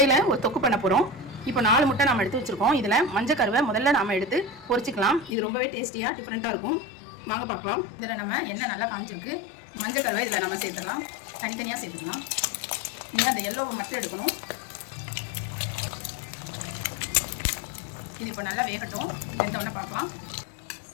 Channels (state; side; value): drops out; right; at 5.4 s